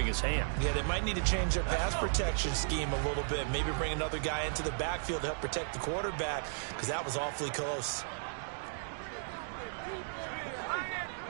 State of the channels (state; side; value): silent; left; digital silence